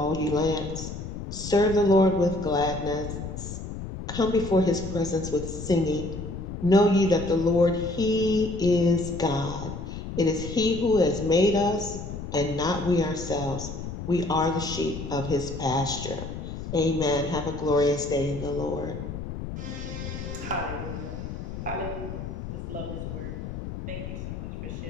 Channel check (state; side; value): noise; left; rumble, 8 dB below the sound